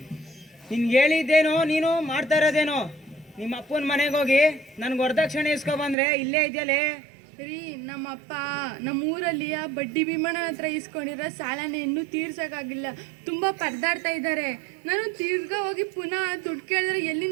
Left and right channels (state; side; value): drops out; left; at 6.0 s